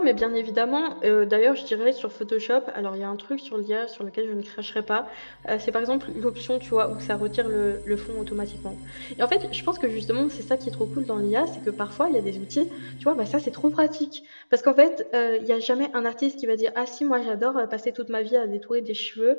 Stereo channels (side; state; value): both; inverted; correlation -1.00